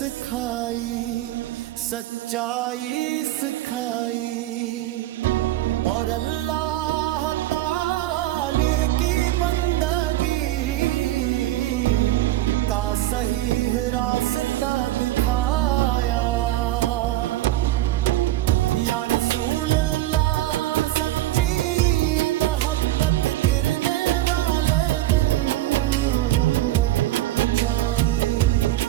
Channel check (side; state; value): left; quieter; 15.1 dB